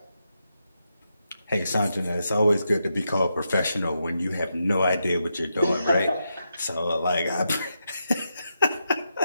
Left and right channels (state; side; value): inverted; both; correlation -0.85